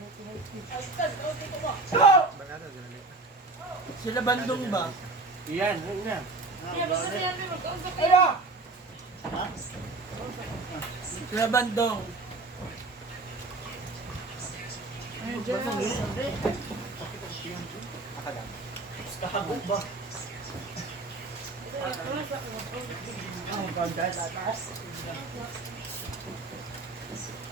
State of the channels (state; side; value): quieter; left; 3.4 dB